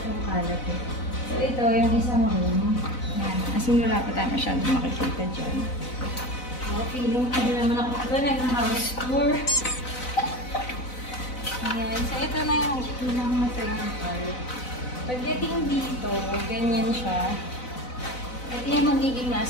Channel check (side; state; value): right; late; 4.0 ms